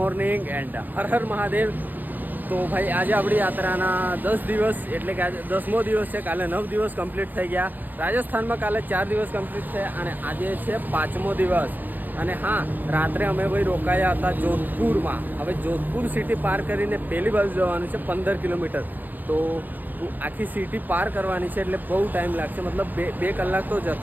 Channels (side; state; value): left; late; 0.086 ms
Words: and Har Har Mahadev. તો ભાઈ આજે આપણી યાત્રાના 10 દિવસ એટલે કે આજે 10મો દિવસ છે. કાલે 9 દિવસ કમ્પ્લીટ થઈ ગયા. રાજસ્થાનમાં કાલે 4 દિવસ કમ્પ્લીટ થયા અને આજે છે 5મો દિવસ. અને હા, રાત્રે અમે ભાઈ રોકાયા હતા જોધપુરમાં. હવે જોધપુર સિટી પાર કરીને પહેલી બાજુ જવાનું છે 15 કિલોમીટર. તો આખી સિટી પાર કરવાની છે એટલે બહુ ટાઈમ લાગશે. મતલબ બે કલાક તો